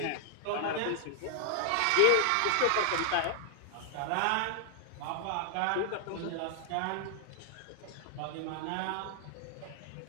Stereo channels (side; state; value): both; different; correlation 0.00